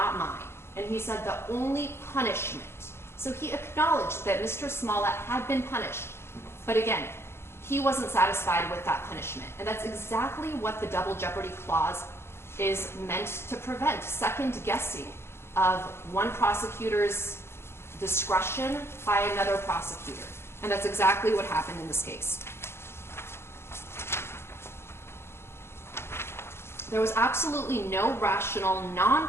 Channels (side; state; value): right; late; 0.12 ms